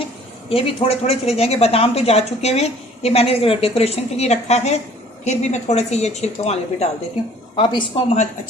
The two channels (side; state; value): both; normal; correlation 0.54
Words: ये भी थोड़े थोड़े चले जाएंगे। बादाम तो जा चुके हुए, ये मैंने डेकोरेशन के लिए रखा है। फिर भी मैं थोड़े से ये छिलकों वाले भी डाल देती हूँ। अब इसको हम